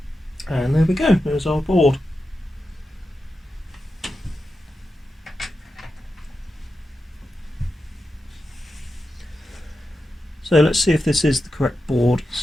And there we go, there's our board. So let's see if this is the correct board.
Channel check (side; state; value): both; normal; correlation 0.90